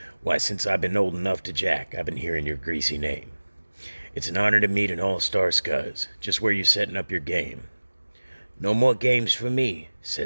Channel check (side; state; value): both; inverted; correlation -1.00